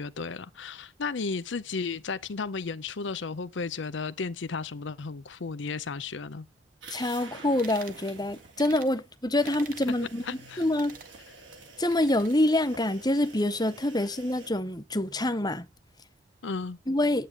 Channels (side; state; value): both; normal; correlation 0.66